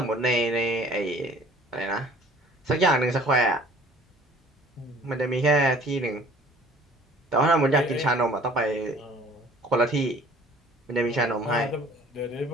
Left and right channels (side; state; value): both; normal; correlation 0.52